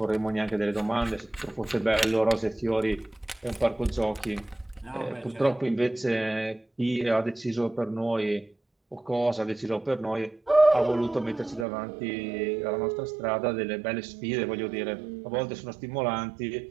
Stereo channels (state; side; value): drops out; left; at 11.7 s